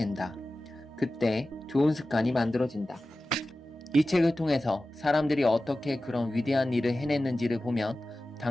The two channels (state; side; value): normal; both; correlation 0.95